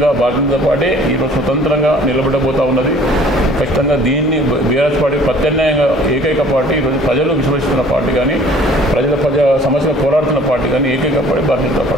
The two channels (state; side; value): normal; both; correlation 0.52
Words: భారతీయ జనతా పార్టీ ఈరోజు స్వతంత్రంగా నిలబడబోతూ ఉన్నది. ఖచ్చితంగా దీన్ని బీఆర్ఎస్ పార్టీ ప్రత్యామ్నాయంగా ఏకైక పార్టీ, ఈరోజు ప్రజలు విశ్వసిస్తున్న పార్టీ కానీ, ప్రజల సమస్యలు పోరాడుతున్న పార్టీ కానీ ఏకైక పార్టీ భారతీయ జనతా